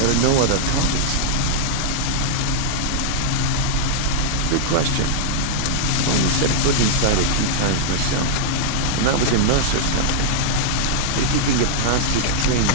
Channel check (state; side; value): different; both; correlation -0.02